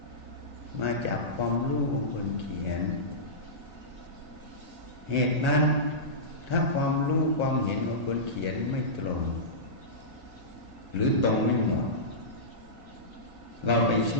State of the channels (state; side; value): late; left; 1.8 ms